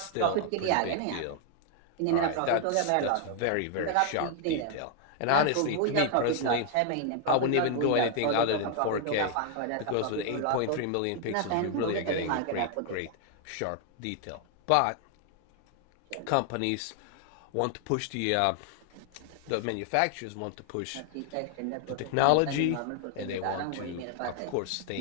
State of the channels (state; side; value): different; both; correlation 0.00